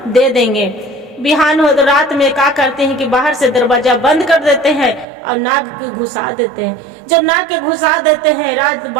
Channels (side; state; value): left; drops out; at 5.1 s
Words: दे देंगे। बिहान हो तो रात में क्या करते हैं कि बाहर से दरवाजा बंद कर देते हैं और नाग के घुसा देते हैं। जब नाग के घुसा देते हैं, रात